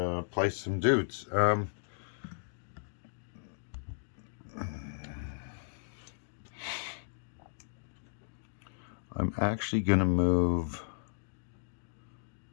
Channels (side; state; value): right; silent; digital silence